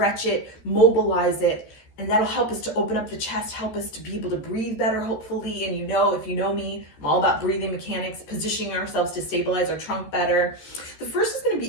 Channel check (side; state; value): right; late; 14 ms